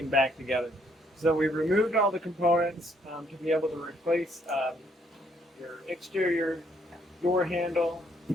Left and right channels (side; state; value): both; normal; correlation 0.68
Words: back together. So we removed all the components to be able to replace your exterior door handle,